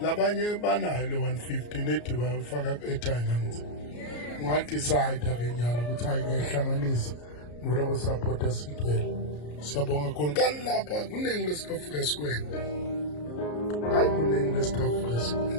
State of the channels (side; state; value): right; late; 34 ms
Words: Labanye banayo le 150 nethi bayofaka airtime ngithi ungadecide akenyalo ukuthi ayihlanganisa ngoba support Sitwell. Siyabonga kakhulu kanilapha kuningi lesikafika sikwenza. Hayi kuningi lesikafika